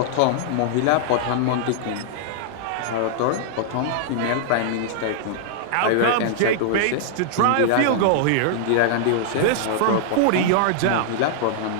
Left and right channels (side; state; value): both; different; correlation -0.01